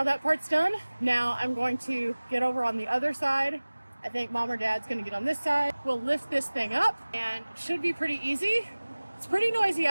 that part's done. Now I'm going to get over on the other side. I think Mom or Dad's gonna get on this side. We'll lift this thing up, and it should be pretty easy. It's pretty noisy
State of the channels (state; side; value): inverted; both; correlation -1.00